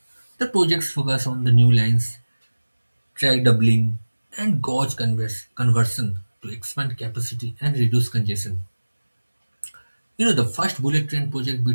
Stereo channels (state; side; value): inverted; both; correlation -1.00